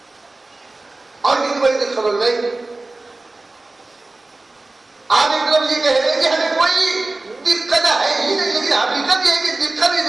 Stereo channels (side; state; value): left; quieter; 3.1 dB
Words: اور کتنی بڑی دقت ہو گئی. آپ ایک طرف یہ کہہ رہے ہیں کہ ہمیں کوئی دقت ہے ہی نہیں لیکن حقیقت یہ ہے کہ دقت